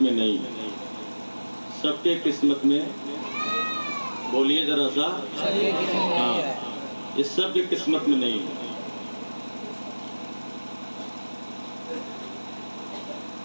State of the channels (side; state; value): both; inverted; correlation -1.00